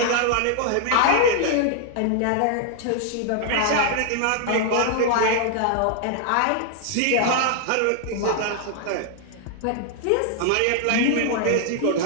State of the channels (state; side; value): different; both; correlation 0.00